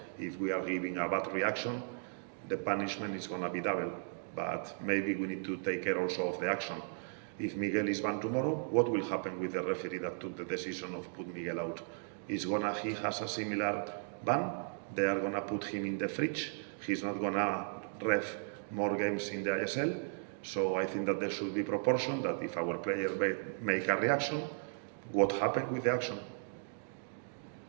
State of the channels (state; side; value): silent; left; digital silence